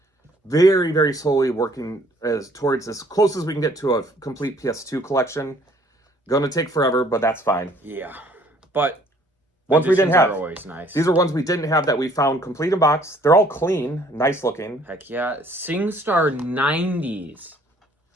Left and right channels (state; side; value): normal; both; correlation 0.59